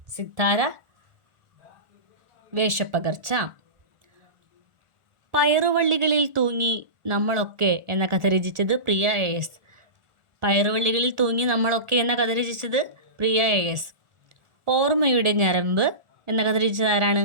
സിത്താര വേഷപ്പകർച്ച. പയറുവള്ളികളിൽ തൂങ്ങി നമ്മളൊക്കെ എന്ന കഥ രചിച്ചത് പ്രിയ AS. പയറുവള്ളികളിൽ തൂങ്ങി നമ്മളൊക്കെ എന്ന കഥ രചിച്ചത് പ്രിയ AS. ഓർമ്മയുടെ ഞരമ്പ് എന്ന കഥ രചിച്ചത് ആരാണ്?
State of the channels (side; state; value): left; late; 1.4 ms